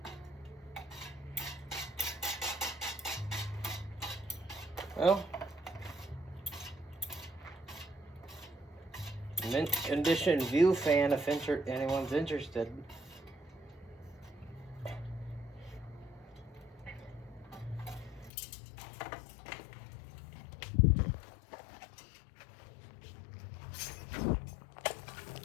Well, mint condition view fan if anyone's interested.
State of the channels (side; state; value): right; drops out; at 18.3 s